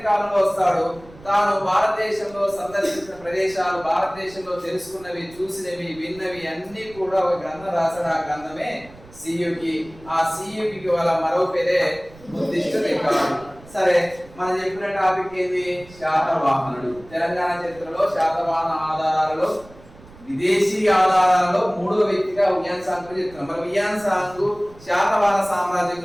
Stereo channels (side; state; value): right; noise; rumble, 22 dB below the sound